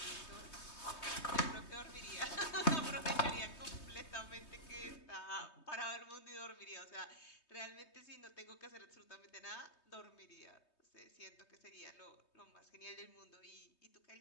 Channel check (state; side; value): late; right; 3.2 ms